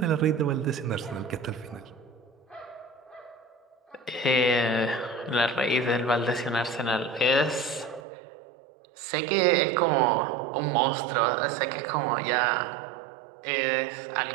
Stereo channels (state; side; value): drops out; left; at 8.0 s